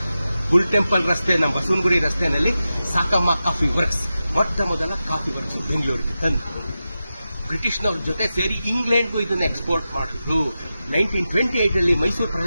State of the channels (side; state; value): both; inverted; correlation -0.92